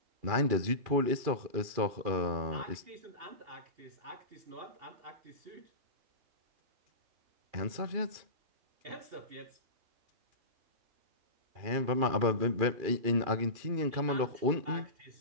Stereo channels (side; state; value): left; late; 2.4 ms